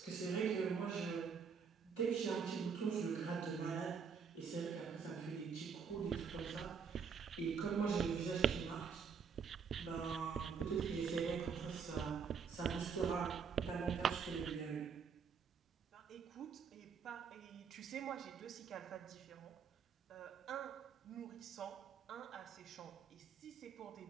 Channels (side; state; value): left; quieter; 6.3 dB